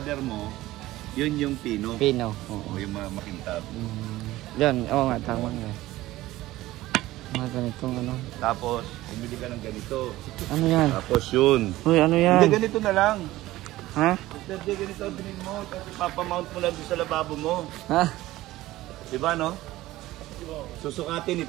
mo, yun yung pino. Pino, oo. O yung mga makintab. Yan, oo nga, tama nga. Mga ganitong ano. Tapos, bumili ka ng ganito. Ano yan? Tapos yun. Uy, ano yan? Hindi, ganito na lang. Ha? Hindi, ganito ang bilhin mo. Tapos papamount mo lang doon sa lababo mo. Ha? Diba, no? Susukatin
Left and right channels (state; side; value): quieter; left; 16.7 dB